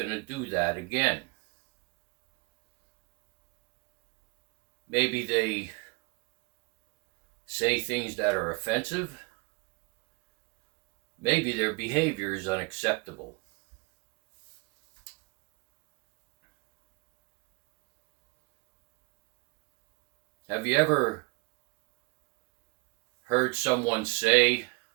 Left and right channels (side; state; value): left; quieter; 28.5 dB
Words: to do that again? Maybe they say things that are offensive. Maybe their behavior is unacceptable. Have you ever heard someone say,